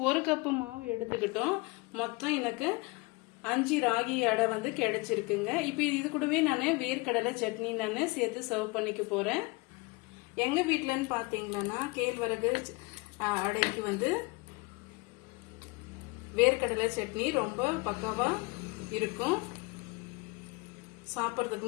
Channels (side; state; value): right; quieter; 26.1 dB